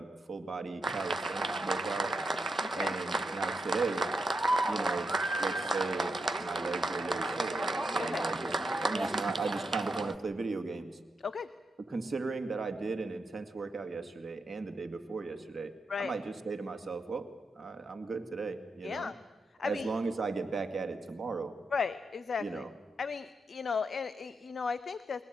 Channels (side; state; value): both; normal; correlation 0.84